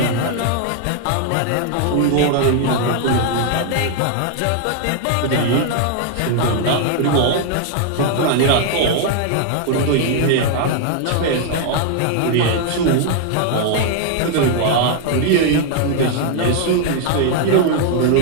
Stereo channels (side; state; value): both; different; correlation 0.00